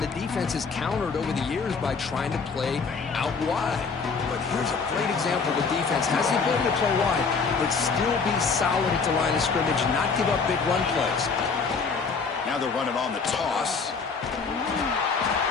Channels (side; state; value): right; quieter; 5.0 dB